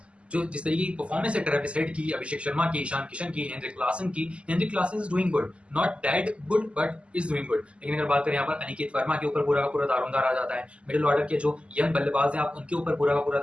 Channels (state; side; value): late; left; 0.056 ms